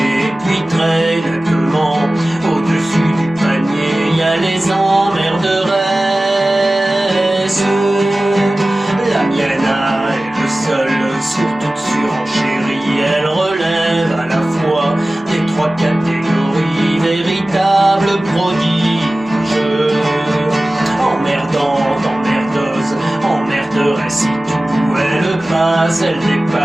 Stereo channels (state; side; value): normal; both; correlation 0.97